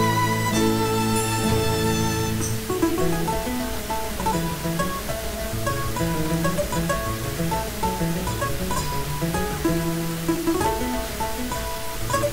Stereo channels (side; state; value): both; identical; correlation 1.00